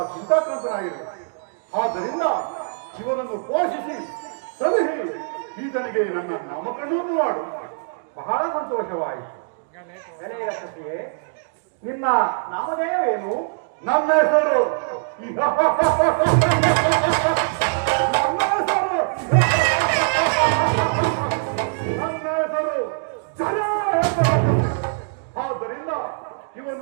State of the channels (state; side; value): silent; left; digital silence